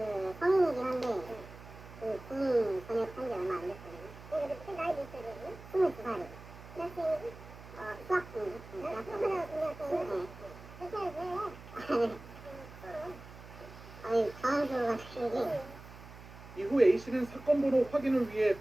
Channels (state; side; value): noise; right; hum, 17 dB below the sound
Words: 성인이긴 한데 군인 전역한 지 얼마 안 됐거든요. 그 나이 몇 살이에요? 22살이요. 대학생이지? 수학 중이요. 당황스러워가지고 이후 A씨는 사건 번호 확인을 위해